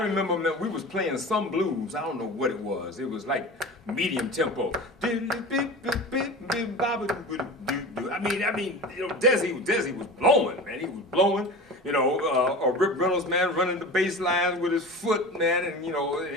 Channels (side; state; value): both; normal; correlation 0.33